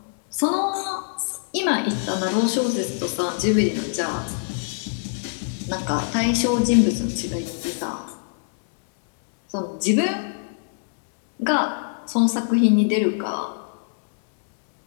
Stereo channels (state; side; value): silent; right; digital silence